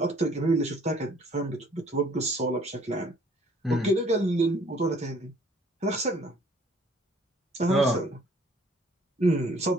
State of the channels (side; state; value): both; normal; correlation 0.58